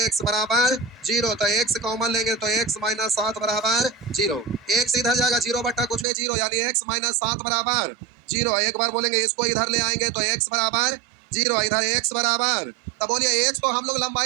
बराबर 0, तो x कॉमन लेंगे तो x माइनस 7 बराबर 0, x इधर जाएगा 0 बट्टा कुछ भी 0 यानी x माइनस 7 बराबर 0, एक बार बोलेंगे इसको इधर ले आएंगे तो x बराबर 0, इधर x बराबर, तो बोलिए x तो हम लोग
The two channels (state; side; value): drops out; left; at 6.1 s